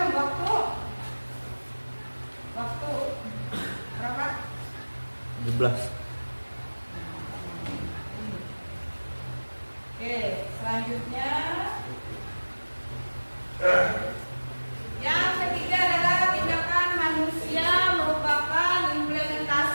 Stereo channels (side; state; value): both; inverted; correlation -1.00